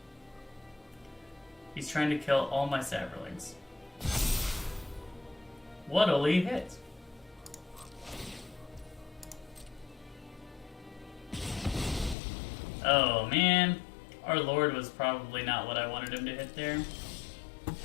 He's trying to kill all my saplings. What'll he hit? Oh man. Our Lord was probably not what I wanted him to hit there.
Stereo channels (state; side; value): drops out; right; at 12.2 s